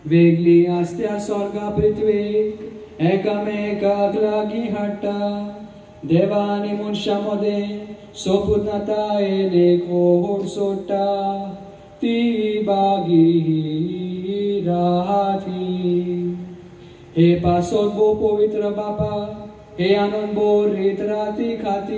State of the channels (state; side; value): identical; both; correlation 1.00